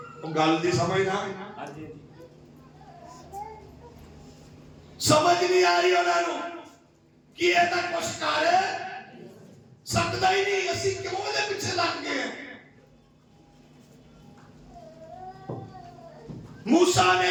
ਉਹ ਗੱਲ ਦੀ ਸਮਝ ਨਾ ਸਮਝ ਨਹੀਂ ਆ ਰਹੀ ਉਹਨਾਂ ਨੂੰ ਕਿ ਇਹ ਤਾਂ ਕੁਛ ਕਰ ਸਕਦਾ ਹੀ ਨਹੀਂ। ਅਸੀਂ ਕਿਉਂ ਇਹਦੇ ਪਿੱਛੇ ਲੱਗ ਗਏ? ਮੂਸਾ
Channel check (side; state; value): both; identical; correlation 1.00